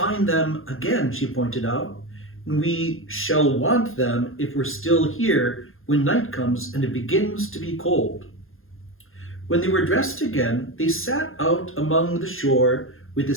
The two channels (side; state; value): right; late; 0.60 ms